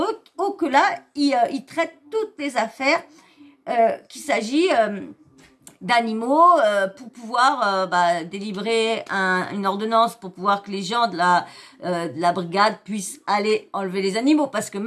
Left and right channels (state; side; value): identical; both; correlation 1.00